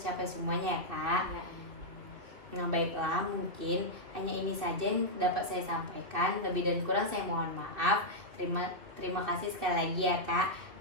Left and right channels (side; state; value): left; late; 2.7 ms